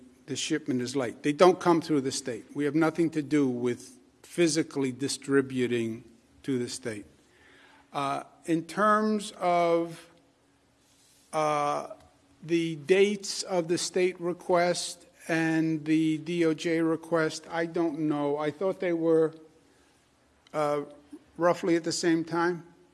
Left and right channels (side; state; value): both; identical; correlation 1.00